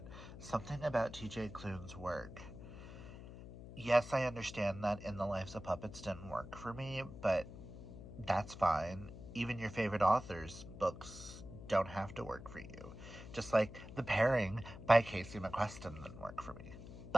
something about TJ Klune's work. Yes, I understand that In the Lives of Puppets didn't work for me, but that's fine. Even your favorite authors' books don't have to work for you. Just like The Pairing by Casey McQuestion didn't work for me.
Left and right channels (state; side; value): noise; left; hum, 13 dB below the sound